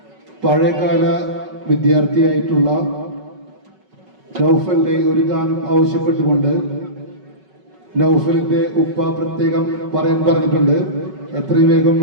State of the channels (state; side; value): late; left; 5.3 ms